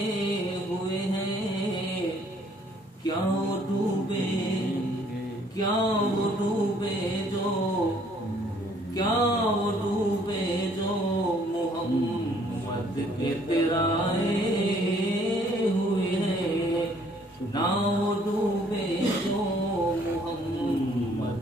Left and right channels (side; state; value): both; normal; correlation 0.62